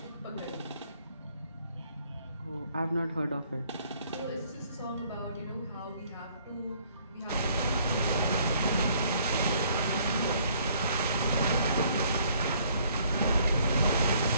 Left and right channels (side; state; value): both; inverted; correlation -0.63